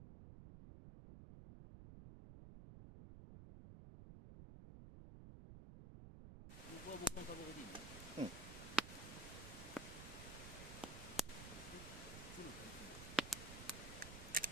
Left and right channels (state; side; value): noise; right; rumble, 9 dB below the sound